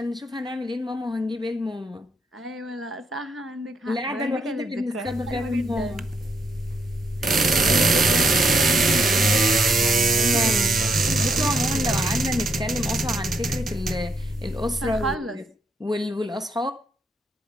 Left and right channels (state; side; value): normal; both; correlation 0.76